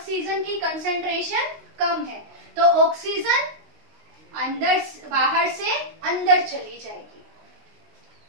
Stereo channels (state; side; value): late; left; 19 ms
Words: की कंसंट्रेशन कम है, तो ऑक्सीजन अंदर बाहर से अंदर चली जाएगी।